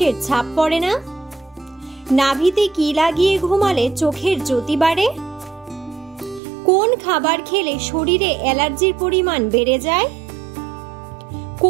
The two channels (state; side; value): drops out; left; at 6.4 s